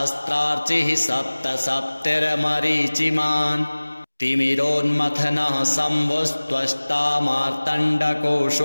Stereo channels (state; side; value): inverted; both; correlation -1.00